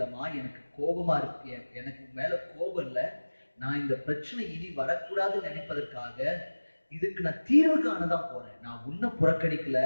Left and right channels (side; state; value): both; inverted; correlation -1.00